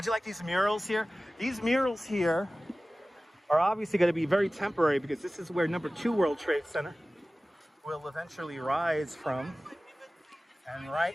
you like these murals here? These murals here are obviously going to be very temporary because this is where number 2 World Trade Center will eventually rise from. And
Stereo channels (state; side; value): normal; both; correlation 0.97